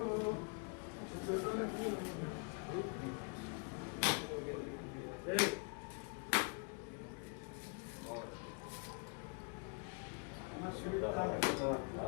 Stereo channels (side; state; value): right; quieter; 35.8 dB